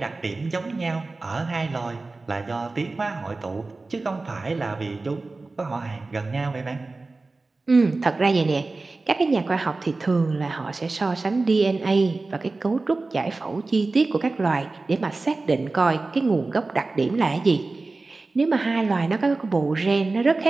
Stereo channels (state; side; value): quieter; left; 3.5 dB